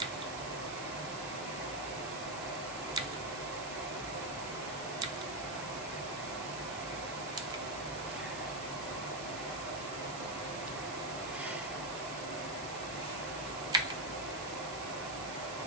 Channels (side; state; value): right; noise; hiss, 10 dB below the sound